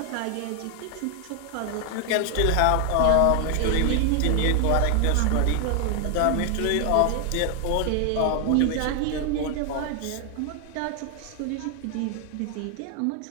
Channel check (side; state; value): both; different; correlation 0.00